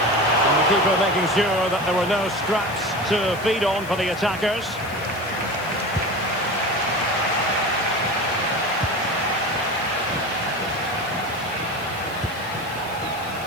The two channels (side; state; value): left; noise; hiss, 19 dB below the sound